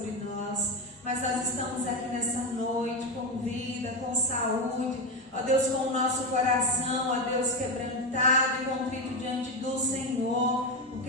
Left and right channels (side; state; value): both; normal; correlation 0.13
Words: nós. Mas nós estamos aqui nessa noite com vida, com saúde, ó Deus, com o nosso coração, ó Deus, quebrantado e contrito diante do Senhor,